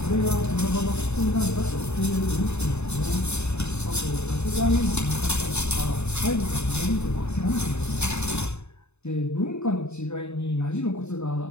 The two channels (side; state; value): right; late; 0.81 ms